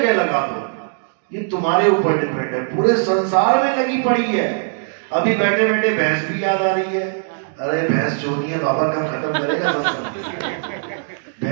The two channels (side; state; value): left; silent; digital silence